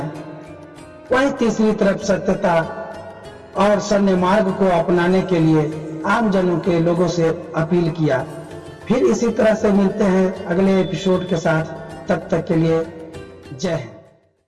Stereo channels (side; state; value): both; identical; correlation 1.00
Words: वहीं तीसरी तरफ सत्यता और सन्य मार्ग को अपनाने के लिए आम जनों के लोगों से अपील किया। फिर इसी तरह से मिलते हैं अगले एपिसोड के साथ, तब तक के लिए जय